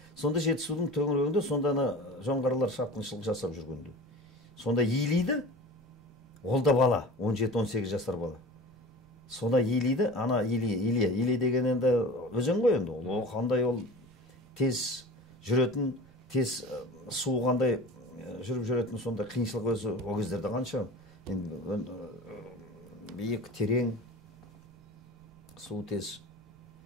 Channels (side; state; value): right; noise; rumble, 28 dB below the sound